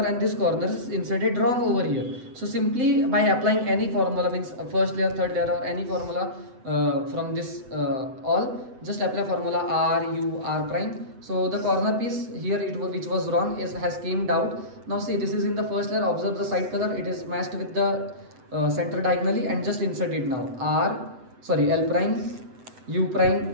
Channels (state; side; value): late; left; 8.0 ms